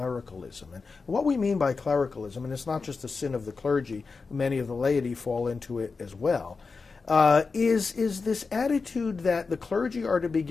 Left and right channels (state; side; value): quieter; right; 4.5 dB